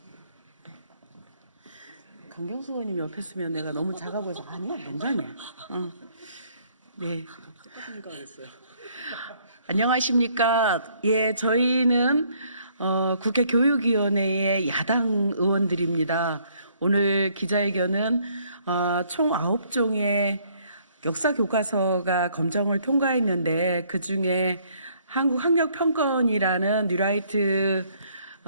강경수 의원님 옆에 있으면 내가 너무 작아 보여서 아니야, 농담이야. 네. 안녕하십니까? 예, 저희는 국회 교육위원회의 야당 의원들입니다. 오늘 기자회견은 총 9종의 역사 교과서가 검정을 통과했는데 그 중에 한국학력평가원이라는 뉴라이트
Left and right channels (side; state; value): both; inverted; correlation -0.65